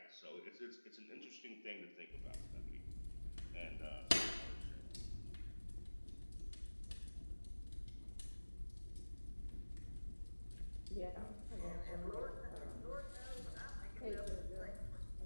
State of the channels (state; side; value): inverted; both; correlation -1.00